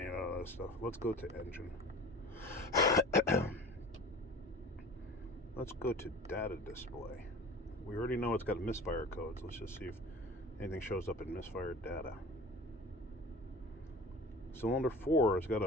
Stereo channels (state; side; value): normal; both; correlation 0.39